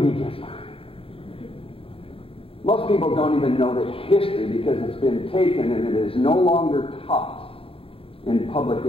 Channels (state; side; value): late; right; 0.27 ms